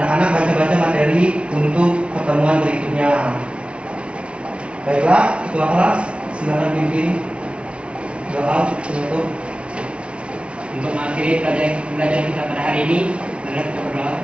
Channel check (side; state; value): left; late; 0.059 ms